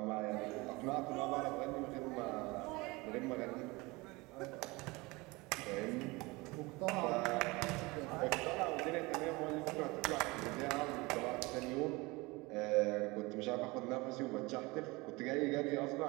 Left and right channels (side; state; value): left; quieter; 23.7 dB